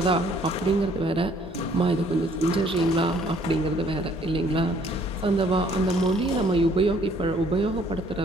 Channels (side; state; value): both; normal; correlation 0.60